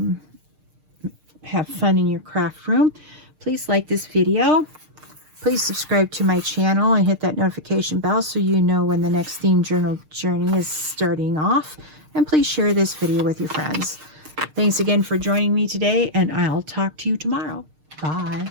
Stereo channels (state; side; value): late; left; 6.5 ms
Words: have fun in your craft room. Please like this video. Please subscribe to my channel and hit that notification bell so you know when the next theme journal journey is starting off. And please share this video with your friends. Thanks again for joining me today, and I'll talk to you tomorrow. Bye.